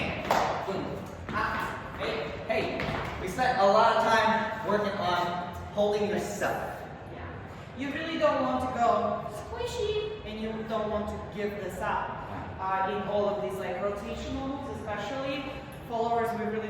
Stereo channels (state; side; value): identical; both; correlation 1.00